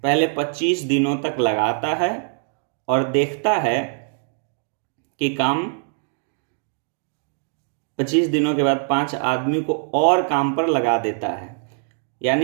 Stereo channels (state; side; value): silent; left; 60 dB below the other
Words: पहले 25 दिनों तक लगाता है और देखता है कि काम 25 दिनों के बाद 5 आदमी को और काम पर लगा देता है।